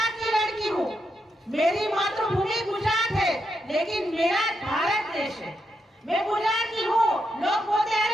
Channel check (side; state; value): both; normal; correlation 0.83